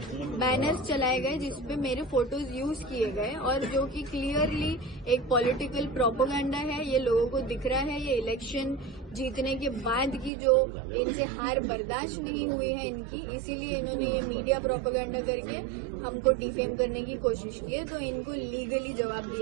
बैनर्स चलाए गए जिसपे मेरे फोटोज यूज किए गए और जो कि क्लियरली एक पॉलिटिकल प्रोपेगेंडा है। ये लोगों को दिख रहा है, ये इलेक्शन जीतने के बाद की जो इनसे हार बर्दाश्त नहीं हुई है इनकी, इसीलिए इन्होंने ये मीडिया प्रोपेगेंडा करके हमको डिफेम करने की कोशिश की है, तो इनको लीगली जवाब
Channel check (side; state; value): left; drops out; at 10.3 s